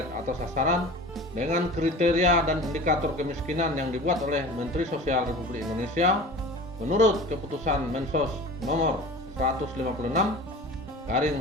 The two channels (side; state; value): both; normal; correlation 0.38